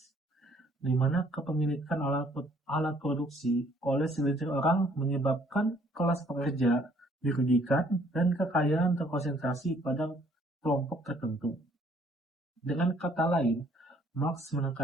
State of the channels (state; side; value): normal; both; correlation 0.62